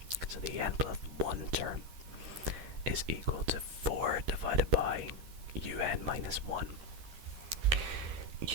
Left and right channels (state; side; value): late; left; 12 ms